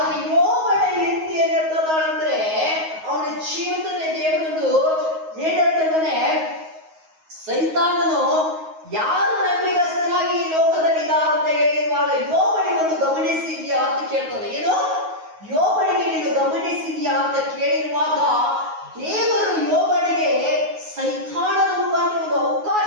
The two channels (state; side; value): late; left; 9.4 ms